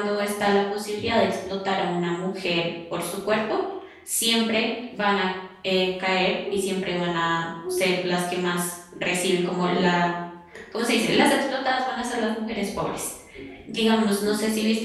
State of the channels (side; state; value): both; identical; correlation 1.00